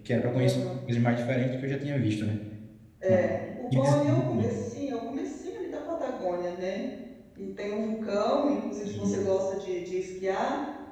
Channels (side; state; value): both; identical; correlation 1.00